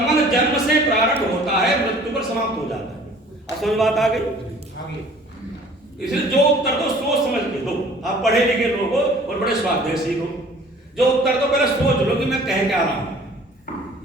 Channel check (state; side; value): normal; both; correlation 0.51